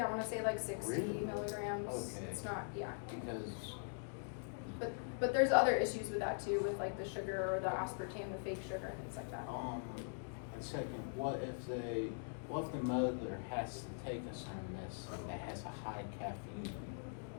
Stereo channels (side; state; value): right; silent; digital silence